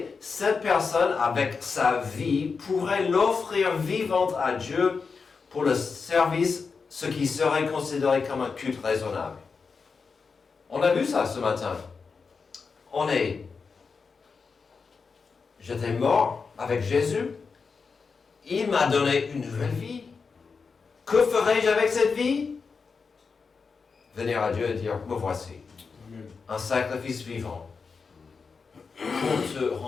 cette personne, avec sa vie, pourrait l'offrir vivante à Dieu pour le service, ce qui serait considéré comme un culte raisonnable. On a vu ça ce matin. J'étais mort avec Jésus. Il m'a donné une nouvelle vie. Que ferai-je avec cette vie? Venir à Dieu et dire, me voici. Amen. Un sacrifice vivant pour te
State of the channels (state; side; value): quieter; right; 5.1 dB